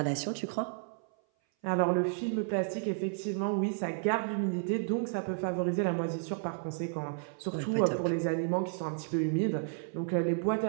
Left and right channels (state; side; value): silent; left; 56 dB below the other